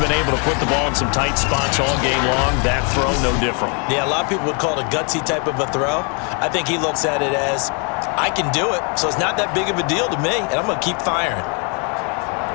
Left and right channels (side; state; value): right; quieter; 36.8 dB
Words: able to put the ball in some tight spots all game long. That throw, no different. Yeah, a lot of people would call it a gutsy type of a throw. I think he looks at it as, I can do it, so it's not that big of a deal to me, and I'm going to keep firing.